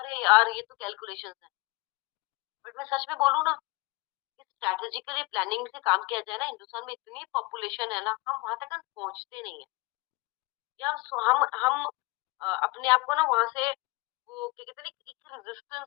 यार ये तो कैलकुलेशंस है। बट मैं सच में बोलूँ ना, इस स्ट्रैटेजिकली प्लानिंग से काम किया जाए ना, हिंदुस्तान में इतनी पॉपुलेशन है ना, हम वहाँ तक हम पहुँचते नहीं है। या हम अपने आप को ना वहाँ से वो क्या कहते हैं ना, एक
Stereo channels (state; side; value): quieter; right; 24.2 dB